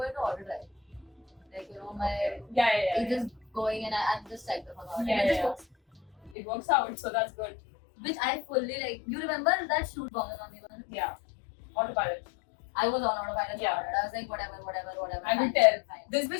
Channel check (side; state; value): right; drops out; at 6.4 s